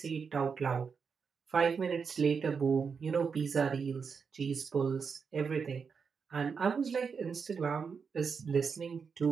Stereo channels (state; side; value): quieter; left; 5.8 dB